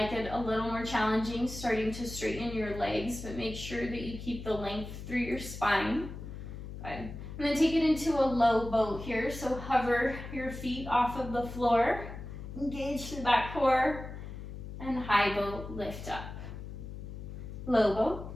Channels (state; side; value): noise; left; hum, 10 dB below the sound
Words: it a little more challenging, starting to straighten your legs, but make sure that you keep the length through your spine. Good. And then take it into a low boat here. So hover your feet off of the floor, engage through that core, and high boat, lift up. Low boat,